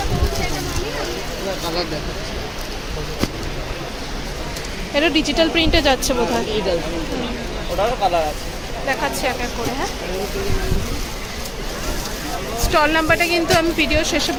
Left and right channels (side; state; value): both; identical; correlation 1.00